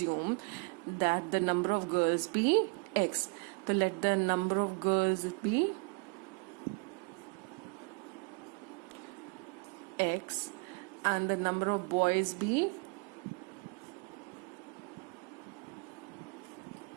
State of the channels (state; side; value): quieter; left; 32.0 dB